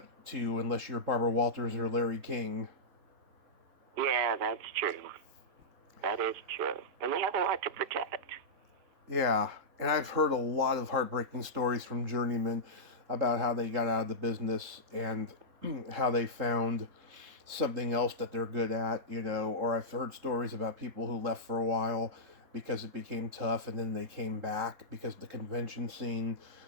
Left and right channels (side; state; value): left; late; 3.7 ms